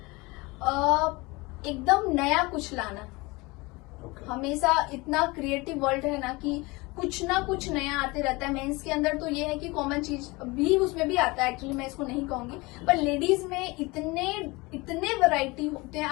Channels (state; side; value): quieter; right; 24.0 dB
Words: एकदम नया कुछ लाना। Okay. हमेशा इतना क्रिएटिव वर्ल्ड है ना कि कुछ ना कुछ नया आते रहता है। मेंस के अंदर तो ये है कि कॉमन चीज भी उसमें भी आता है, एक्चुअली मैं इसको नहीं कहूंगी, पर लेडीज में इतने वैरायटी होते हैं,